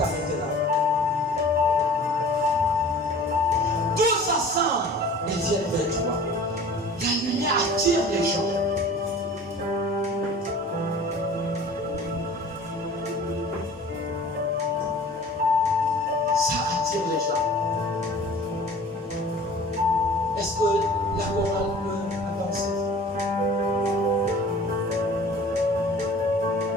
là. Tout s'assemble et viennent vers toi. La lumière attire les gens.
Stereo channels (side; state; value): both; normal; correlation 0.45